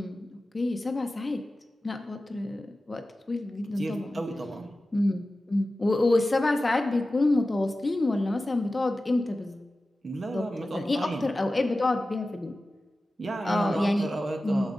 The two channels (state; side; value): normal; both; correlation 0.95